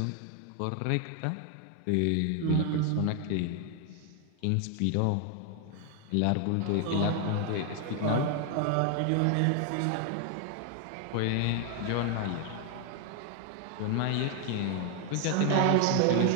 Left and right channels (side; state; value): both; different; correlation 0.00